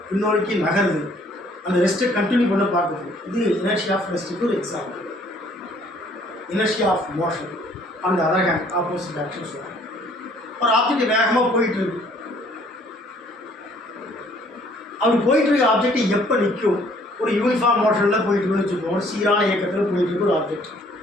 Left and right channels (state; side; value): normal; both; correlation 0.60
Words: பின்னோக்கி நகருது. அந்த ரெஸ்ட்டை கண்டினியூ பண்ண பார்க்குது. இது இனர்ஷியா ஆஃப் ரெஸ்ட்டுக்கு ஒரு எக்ஸாம்பிள். இனர்ஷியா ஆஃப் மோஷன் அந்த அதர் ஹேண்ட் ஆப்போசிட் ஆக்ஷன் சொல்லுவாங்க. ஒரு ஆப்ஜெக்ட் வேகமாக போயிட்டு இருக்கு, அப்படி போயிட்டு இருக்க ஆப்ஜெக்ட் எப்போ நிற்கும்? ஒரு யூனிஃபார்ம் மோஷனில் போயிட்டு இருக்குன்னு வச்சுக்கோங்க, ஒரு சீரான இயக்கத்தில் போயிட்டு இருக்க ஒரு ஆப்ஜெக்ட்